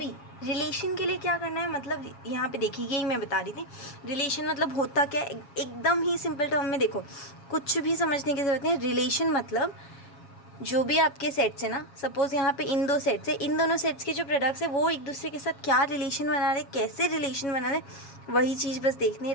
रिलेशन के लिए क्या करना है, मतलब यहाँ पे देखिए, यही मैं बता रही थी, रिलेशन मतलब होता क्या है, एकदम ही सिंपल टर्म में देखो, कुछ भी समझने की ज़रूरत नहीं। रिलेशन मतलब जो भी आपके सेट्स है ना, सपोज़ यहाँ पे इन दो सेट्स है, इन दोनों सेट्स के जो प्रोडक्ट्स है वो एक दूसरे के साथ क्या रिलेशन बना रहे, कैसे रिलेशन बना रहे, वही चीज़ बस देखनी है।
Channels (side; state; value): right; late; 7.3 ms